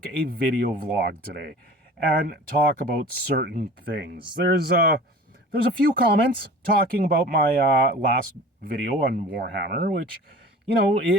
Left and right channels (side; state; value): both; normal; correlation 0.41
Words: a video vlog today and talk about certain things. There's a few comments talking about my last video on Warhammer, which,